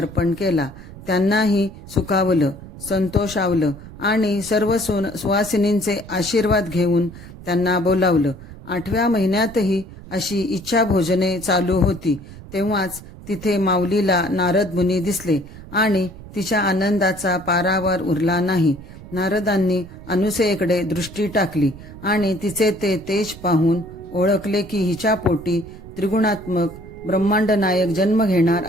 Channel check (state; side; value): noise; right; rumble, 16 dB below the sound